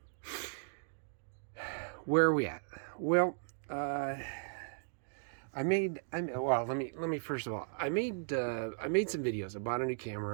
where are we at? Well, well, let me first of all, I made some videos. I bought a new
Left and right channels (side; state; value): left; silent; digital silence